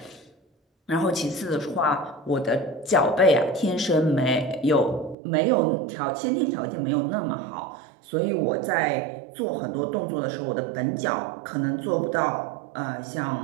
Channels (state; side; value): drops out; left; at 5.2 s